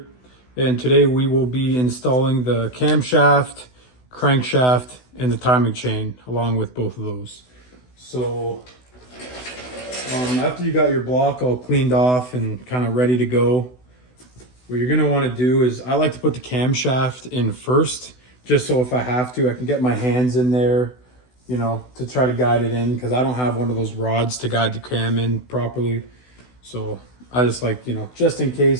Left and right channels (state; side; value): late; right; 16 ms